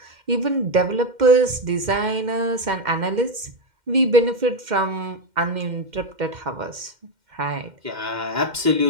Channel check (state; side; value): late; left; 2.1 ms